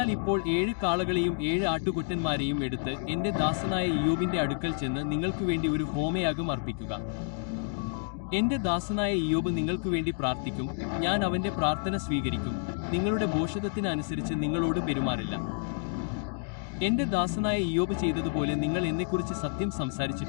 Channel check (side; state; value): right; silent; digital silence